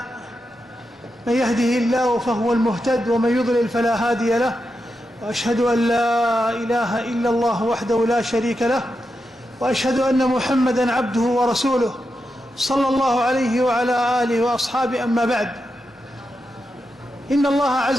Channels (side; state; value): both; normal; correlation 0.87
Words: من يهده الله فهو المهتد ومن يضلل فلا هادي له. وأشهد أن لا إله إلا الله وحده لا شريك له وأشهد أن محمدا عبده ورسوله صلى الله عليه وعلى آله وأصحابه. أما بعد، إن الله